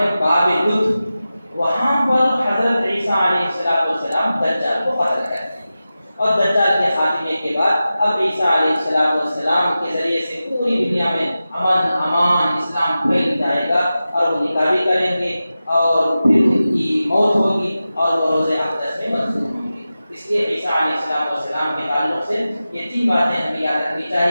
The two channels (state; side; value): inverted; both; correlation -0.94